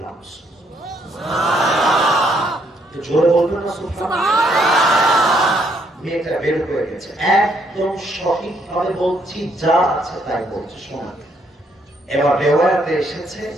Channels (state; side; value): normal; both; correlation 0.71